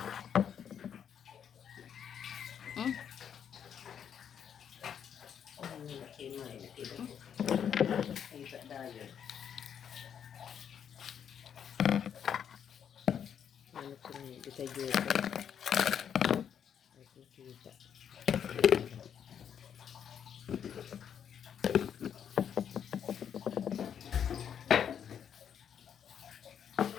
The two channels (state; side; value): quieter; right; 8.4 dB